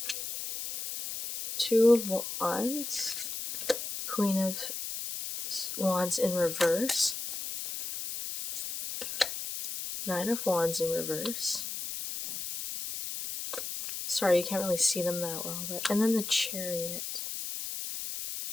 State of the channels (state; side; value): noise; left; hiss, 6 dB below the sound